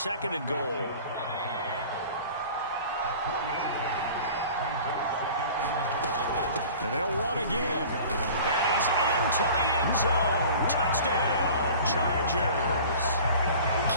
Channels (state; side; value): inverted; both; correlation -0.43